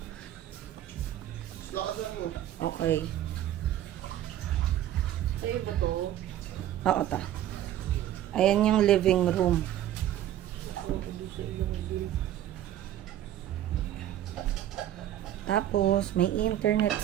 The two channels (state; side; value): quieter; left; 12.2 dB